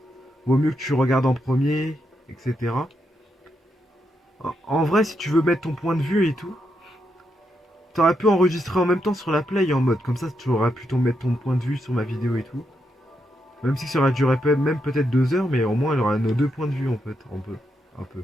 Vaut mieux que tu regardes en premier, etc. En vrai, si tu veux mettre ton point de vue et tout, t'aurais pu enregistrer en même temps sur la play en mode. Comme ça, tu aurais pu mettre ton point de vue sur ma vidéo et tout. Même si ça aurait duré même peut-être 2 heures, mais au moins, il y aura nos deux points de vue en fait. Un peu. Un peu. ouais,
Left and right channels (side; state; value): both; normal; correlation 0.82